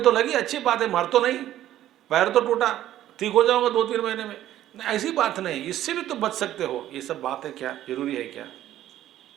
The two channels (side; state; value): left; quieter; 12.9 dB